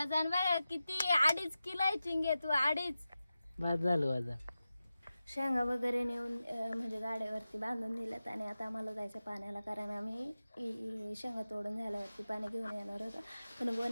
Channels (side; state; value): both; inverted; correlation -0.94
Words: बघ किती. 2.5 किलो आहे चिंगे तू. 2.5. बाद झालं वजन. शेंगा वगैरे नेऊन म्हणजे गाड्यावरती बांधून दिल्यात. आणि आता आम्हाला जायचं पाण्याला, कारण आम्ही शेंगा तोडून झाल्यावरती पाणी घेऊन येणार होतो. पण